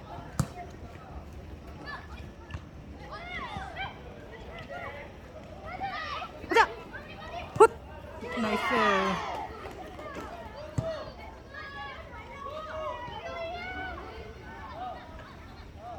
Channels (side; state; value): both; identical; correlation 1.00